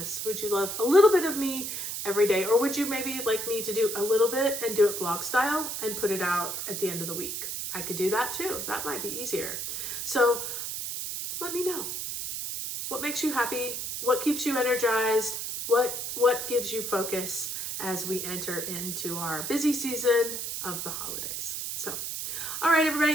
Would you love a little bit of me every day? Or would you maybe like me to do a little bit and do it vlog style and put it out at the end of the week? I could do that too. That might be easier. So let me know. What makes you happy? What keeps you energized? What gives you focus as we enter into our busy season of the holidays? So, all right,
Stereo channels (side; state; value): right; noise; hiss, 4 dB below the sound